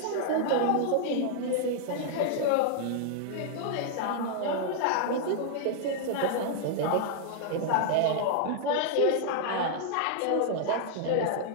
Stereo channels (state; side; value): different; both; correlation -0.01